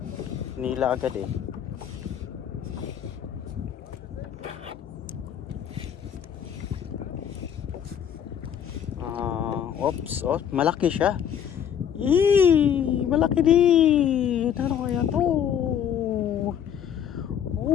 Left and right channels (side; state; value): right; quieter; 8.9 dB